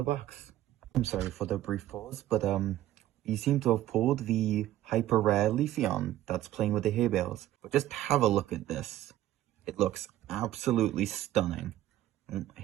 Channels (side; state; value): left; quieter; 13.9 dB